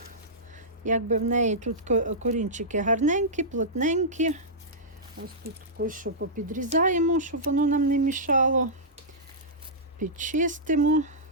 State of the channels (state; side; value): normal; both; correlation -0.14